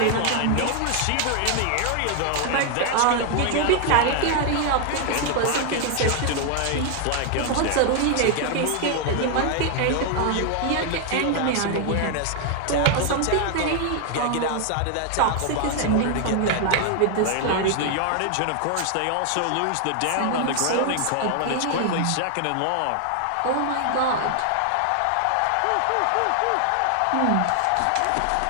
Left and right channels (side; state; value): both; different; correlation 0.00